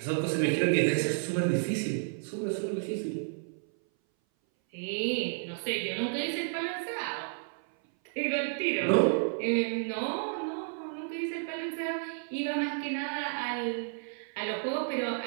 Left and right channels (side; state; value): left; silent; 57 dB below the other